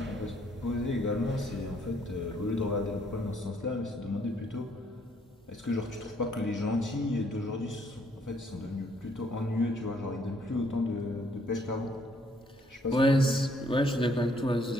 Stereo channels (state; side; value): normal; both; correlation 0.67